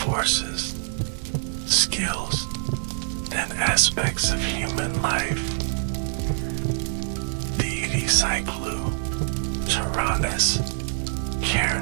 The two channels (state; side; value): silent; left; 61 dB below the other